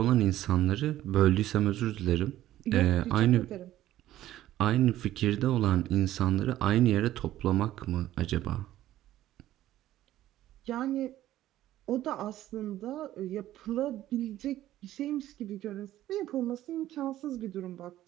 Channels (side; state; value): left; quieter; 13.8 dB